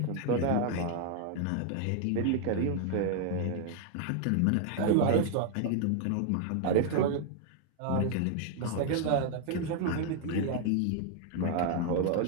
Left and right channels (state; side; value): different; both; correlation 0.00